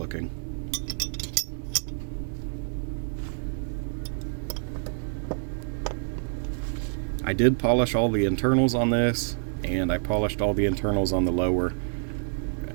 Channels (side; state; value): left; silent; 60 dB below the other